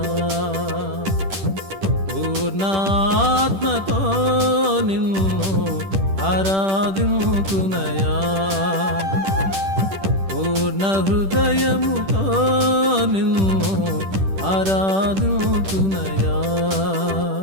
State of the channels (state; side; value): late; left; 10 ms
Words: పూర్ణాత్మతో నిన్ను ఆరాధింతునయా, పూర్ణ హృదయముతో నిన్ను ఆరాధింతునయా,